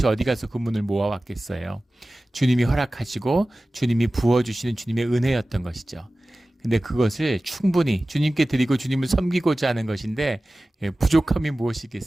어디 가서 그 문을 모아왔겠어요? 주님이 허락하시고 주님이 부어주시는 주님의 은혜였던 것이죠. 근데 그것을 충분히 주님께 드리고 주님을 섬기고자 하는 것인데 부족함이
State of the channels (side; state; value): both; normal; correlation 0.97